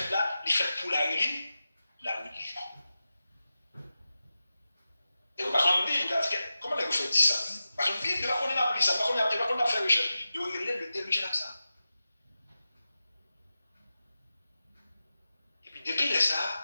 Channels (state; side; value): inverted; both; correlation -0.93